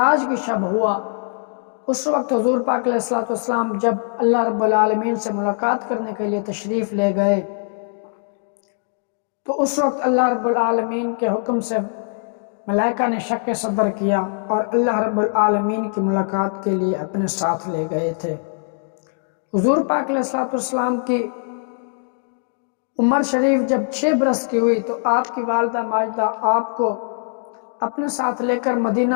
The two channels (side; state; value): right; silent; digital silence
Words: کی شب ہوا۔ اس وقت حضور پاک علیہ السلام جب اللہ رب العالمین سے ملاقات کرنے کے لیے تشریف لے گئے تو اس وقت اللہ رب العالمین کے حکم سے ملائکہ نے شک صدر کیا اور اللہ رب العالمین کی ملاقات کے لیے اپنے ساتھ لے گئے تھے۔ حضور پاک علیہ السلام کی عمر شریف جب 6 برس کی ہوئی تو آپ کی والدہ ماجدہ آپ کو اپنے ساتھ لے کر